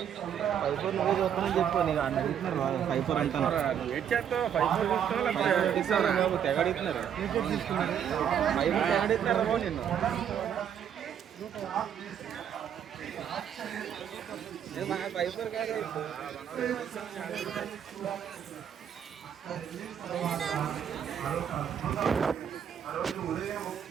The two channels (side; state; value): left; quieter; 8.8 dB